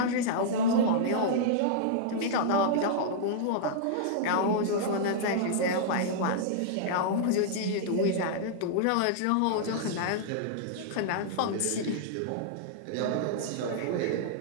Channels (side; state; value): both; different; correlation -0.02